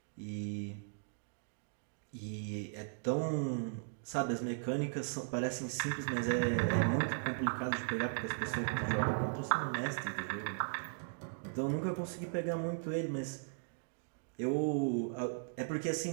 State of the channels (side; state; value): left; silent; digital silence